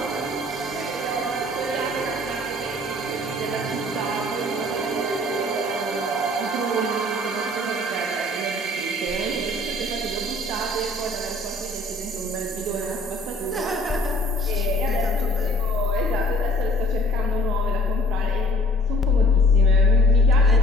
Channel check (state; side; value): normal; both; correlation 0.53